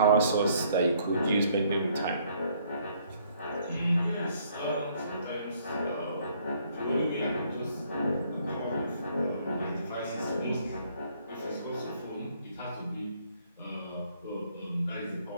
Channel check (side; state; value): both; inverted; correlation -0.65